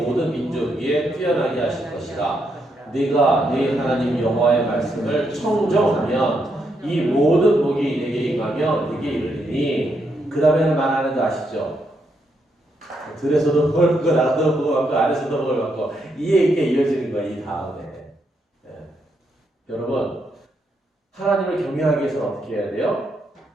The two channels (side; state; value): both; normal; correlation 0.79